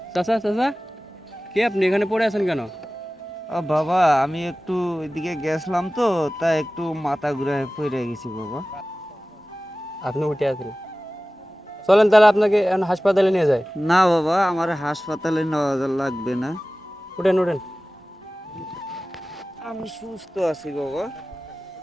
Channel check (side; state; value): both; normal; correlation 0.97